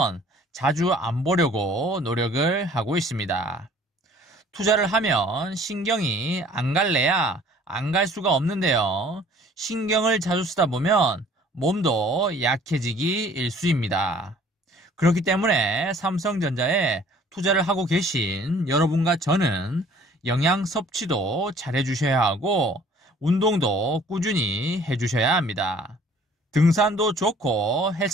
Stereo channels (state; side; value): normal; both; correlation 0.54